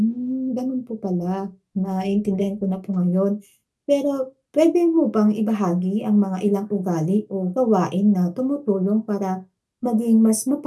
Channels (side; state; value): both; identical; correlation 1.00